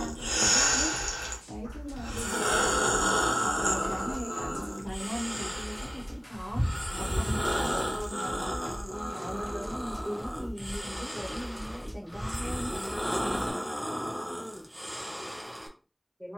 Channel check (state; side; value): identical; both; correlation 1.00